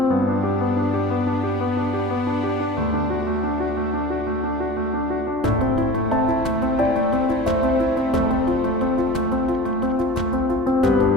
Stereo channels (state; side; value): normal; both; correlation 0.36